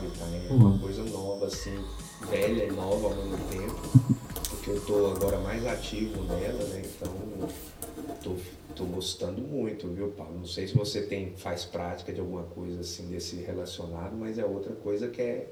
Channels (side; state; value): both; identical; correlation 1.00